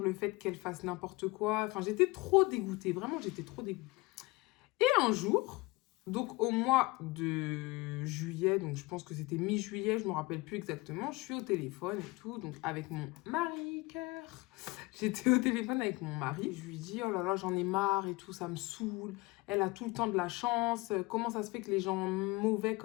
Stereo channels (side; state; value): right; quieter; 22.9 dB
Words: le fait qu'elle fasse n'importe quoi. Enfin, j'étais trop dégoûtée. Vraiment, j'étais trop dégoûtée. Et un jour, donc au mois de juillet, donc je pense que c'était mi-juillet, je ne me rappelle plus exactement, je suis au téléphone et tout, donc avec mon mari, cœur. J'étais au téléphone avec mon mari, je lui dis, oh là là, j'en ai marre et tout, ça me saoule. Elle a tout le temps de la chance. Comment ça se fait que les gens mauvais